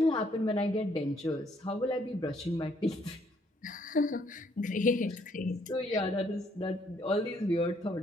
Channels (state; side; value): normal; both; correlation 0.67